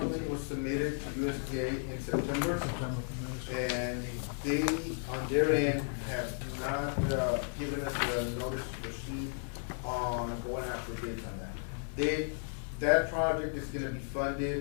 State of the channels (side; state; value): right; silent; digital silence